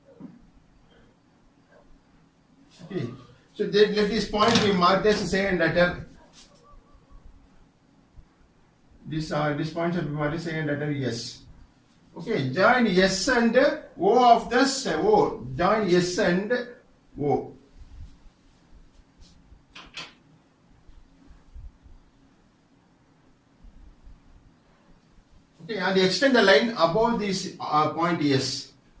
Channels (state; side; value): identical; both; correlation 1.00